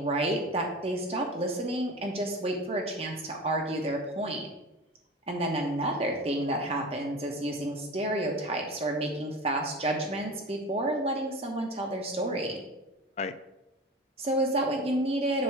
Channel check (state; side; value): normal; both; correlation 0.32